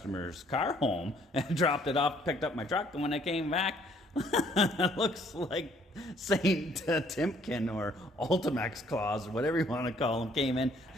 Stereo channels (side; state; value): both; normal; correlation 0.63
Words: car home and dropped it off, picked up my truck, and when I came back, it looks like Saint Timken or Ultimax Claus or whatever you want to call them came in.